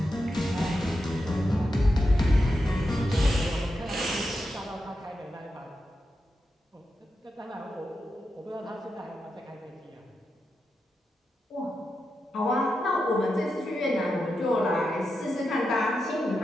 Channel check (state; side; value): normal; both; correlation 0.88